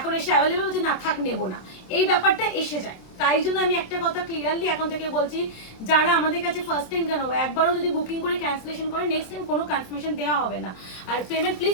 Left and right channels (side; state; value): right; late; 27 ms